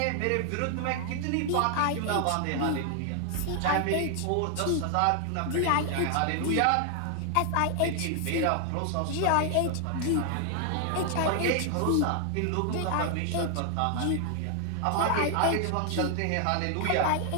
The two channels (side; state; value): both; different; correlation 0.00